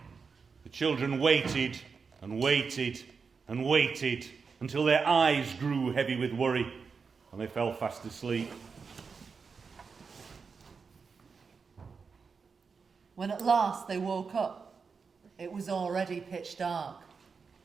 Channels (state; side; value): quieter; left; 5.3 dB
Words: children waited and waited and waited until their eyes grew heavy with worry and they fell fast asleep. When at last they woke up, it was already pitch dark,